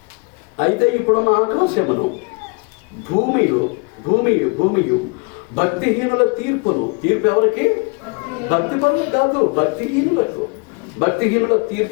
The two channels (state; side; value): quieter; right; 32.2 dB